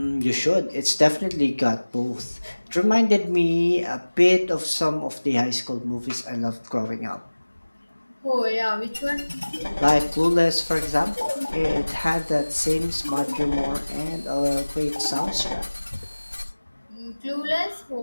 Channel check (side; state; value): both; inverted; correlation -1.00